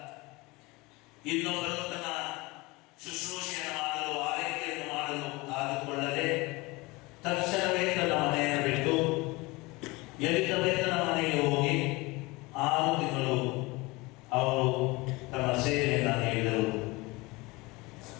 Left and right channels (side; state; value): right; quieter; 23.5 dB